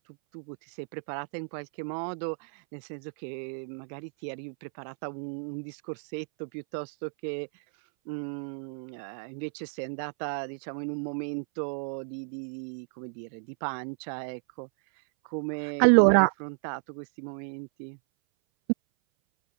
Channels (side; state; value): left; silent; 57 dB below the other